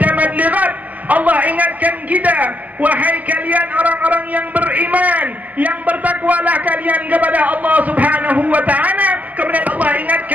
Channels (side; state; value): left; late; 0.078 ms